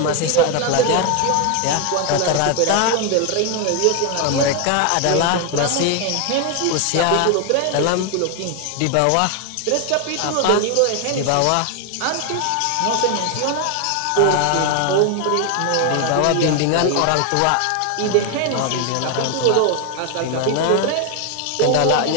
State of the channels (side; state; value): both; different; correlation 0.01